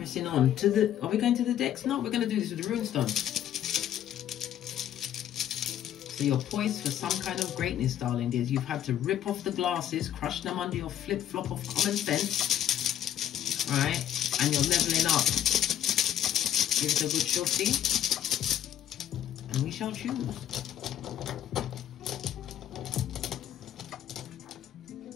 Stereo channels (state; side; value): quieter; right; 10.9 dB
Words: the... Are we going to the decks? No, we're going to do this with the runestone. So you're poised for some kind of greatness, darling dears. You've had to rip off the glasses, crush them under your flip-flop of common sense. Right? And you're leveling up. Give it a good shorty. And we shall choose.